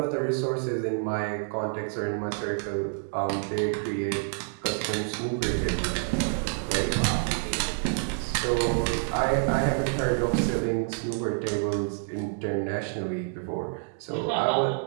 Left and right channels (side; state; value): left; silent; 59 dB below the other